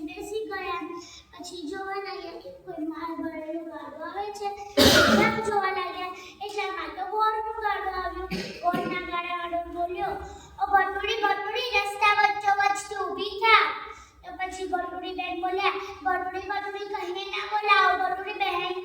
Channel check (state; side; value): identical; both; correlation 1.00